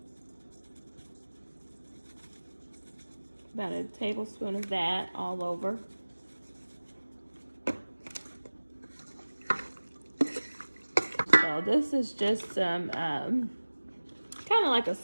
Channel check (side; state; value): both; inverted; correlation -1.00